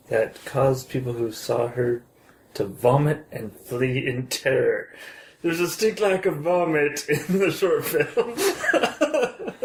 that caused people who saw her to vomit and flee in terror. There's a distinct lack of vomit in the short film.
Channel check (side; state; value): both; identical; correlation 1.00